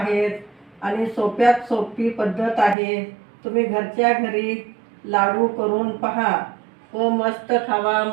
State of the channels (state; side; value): drops out; left; at 2.8 s